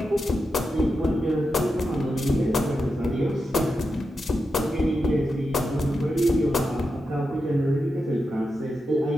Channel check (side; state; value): both; normal; correlation 0.88